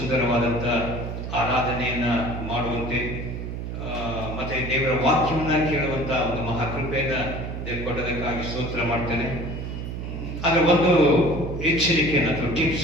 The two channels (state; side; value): noise; right; hum, 6 dB below the sound